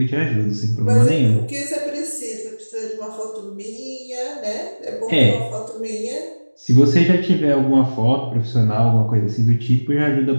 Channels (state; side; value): inverted; both; correlation -1.00